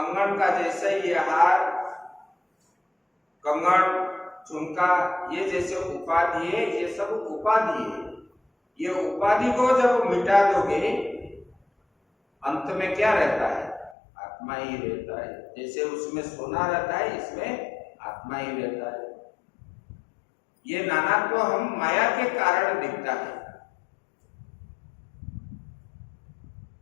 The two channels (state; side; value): drops out; right; at 14.0 s